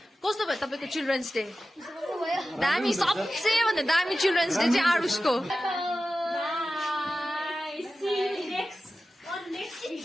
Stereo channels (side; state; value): both; normal; correlation 0.94